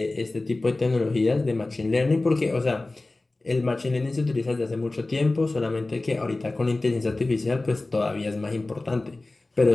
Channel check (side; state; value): right; quieter; 3.0 dB